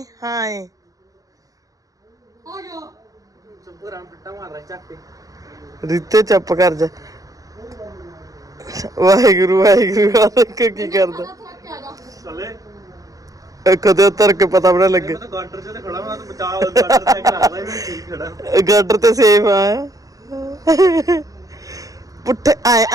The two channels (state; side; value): late; left; 0.17 ms